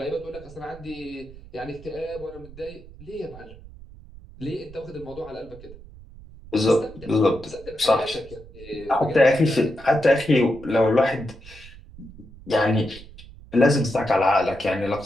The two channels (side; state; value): right; noise; rumble, 19 dB below the sound